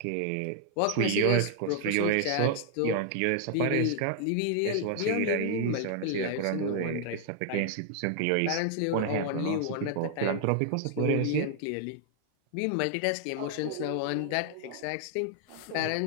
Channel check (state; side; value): different; both; correlation 0.00